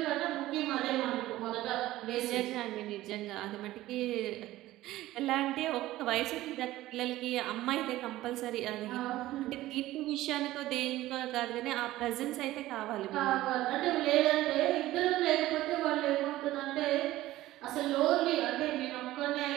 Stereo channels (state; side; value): quieter; left; 16.0 dB